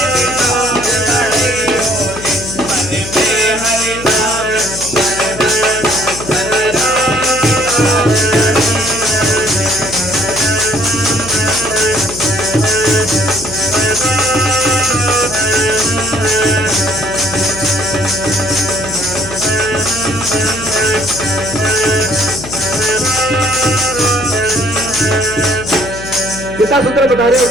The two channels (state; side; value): noise; left; hum, 12 dB below the sound